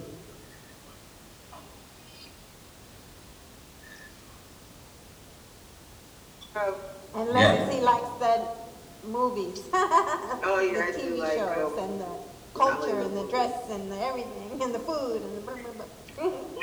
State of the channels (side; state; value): both; identical; correlation 1.00